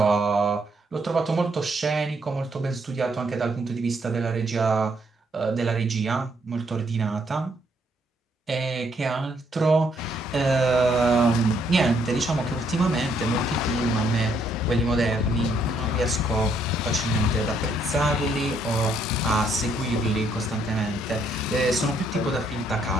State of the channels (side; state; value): both; normal; correlation 0.71